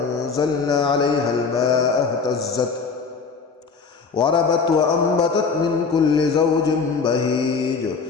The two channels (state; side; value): quieter; right; 5.0 dB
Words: عليها الماء اهتزت وربت وأنبتت من كل زوج بهيج